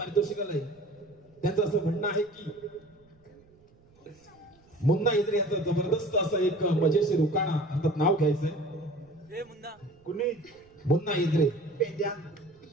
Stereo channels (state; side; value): noise; right; rumble, 30 dB below the sound